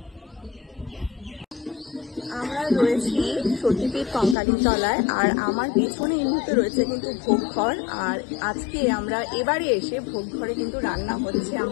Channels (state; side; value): drops out; right; at 4.4 s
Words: আমরা রয়েছি সতীপীঠ কঙ্কালীতলায়, আর আমার পেছনে এই মুহূর্তে রয়েছে কিন্তু ভোগঘর। আর আজকে আমরা এবারে এসে ভোগঘরে কিন্তু রান্না হচ্ছে